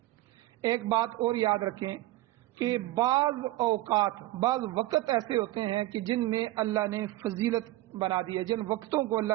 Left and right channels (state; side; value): quieter; left; 17.0 dB